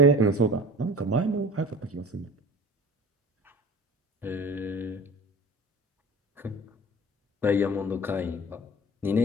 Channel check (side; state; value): both; normal; correlation 0.40